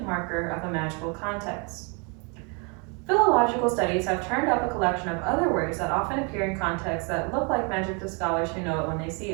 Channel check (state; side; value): quieter; left; 34.0 dB